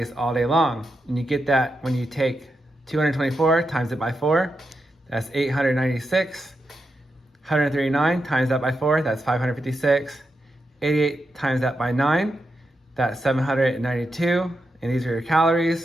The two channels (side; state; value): both; normal; correlation 0.86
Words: all day long. And you get that when you take 224 times it by 4, that's 896. 139 times that by 4, that's 556. 88 times that by 9, that's 792. And these are your